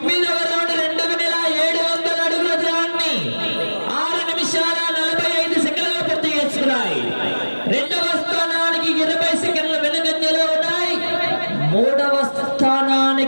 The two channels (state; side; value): inverted; both; correlation -1.00